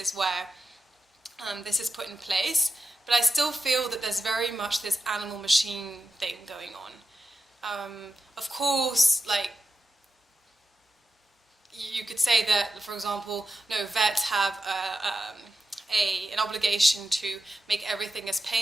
where this is put in place, but I still feel that there's very much this animal-machine thing going on. Of course, you could say that, for example, vets have an obligation to make everything as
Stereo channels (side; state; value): both; normal; correlation 0.90